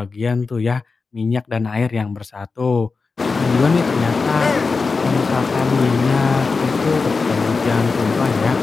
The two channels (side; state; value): right; quieter; 4.4 dB